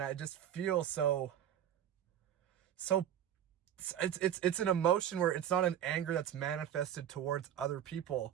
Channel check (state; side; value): quieter; left; 10.2 dB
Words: I just feel so it's an emotion where it's not an anger that's manifested towards other